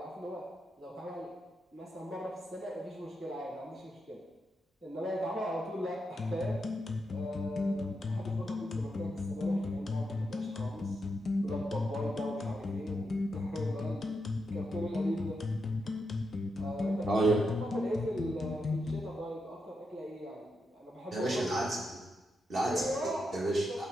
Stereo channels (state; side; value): normal; both; correlation 0.84